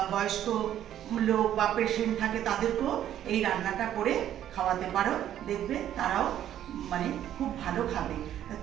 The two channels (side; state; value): left; quieter; 11.2 dB